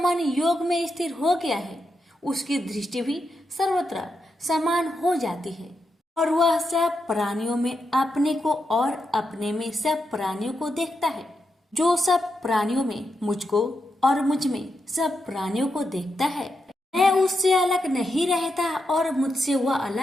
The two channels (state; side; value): normal; both; correlation 0.85